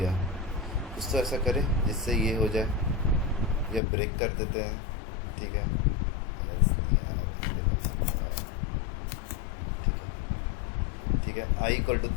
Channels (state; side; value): drops out; right; at 3.8 s